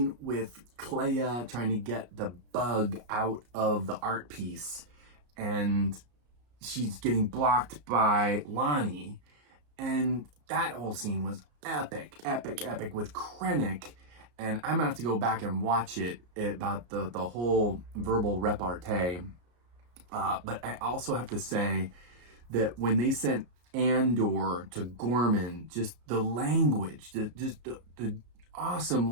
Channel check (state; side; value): late; left; 34 ms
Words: with Clea trying to get the bug out of the art piece, and she's getting blocked by Lonnie, and that whole scene was epic with Krennic. And I'm gonna have to go back and watch it about the whole verbal repartee. But I also have to say that when they sent Andor to Gorman, just the language, the awesome